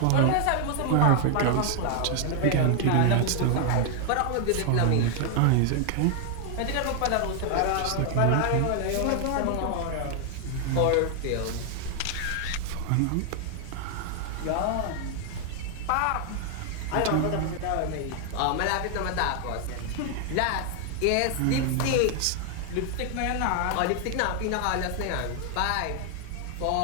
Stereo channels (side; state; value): both; different; correlation 0.00